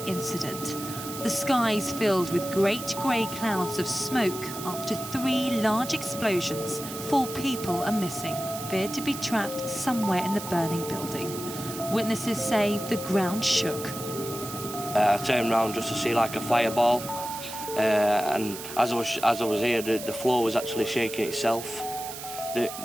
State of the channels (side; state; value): right; noise; hiss, 10 dB below the sound